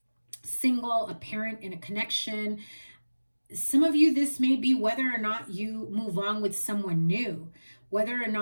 single, a parent, in a connection. Some of you, this may be whether or not you move on with someone new, whether or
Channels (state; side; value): inverted; both; correlation -1.00